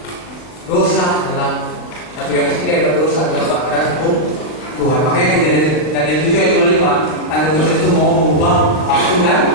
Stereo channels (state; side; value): late; right; 40 ms